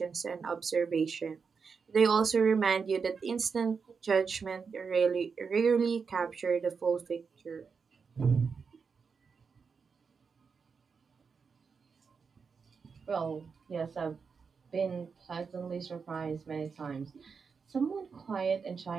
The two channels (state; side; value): quieter; left; 5.5 dB